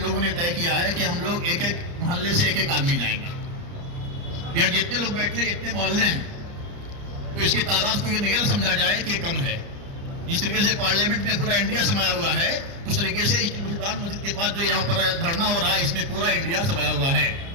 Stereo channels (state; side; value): late; left; 29 ms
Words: ने तय किया है कि हम लोग एक एक मोहल्ले से एक एक आदमी जाएंगे। यहाँ जितने लोग बैठे इतने मोहल्ले हैं, तो इसकी तादाद को ये नहीं समझा जाए कि कम है। जिस तरीके से पार्लियामेंट में पूरा इंडिया समाया हुआ है, उस तरीके से इस्लाम मस्जिद के पास जो यहाँ पर धरना हो रहा है, इसमें पूरा इंडिया समाया हुआ है।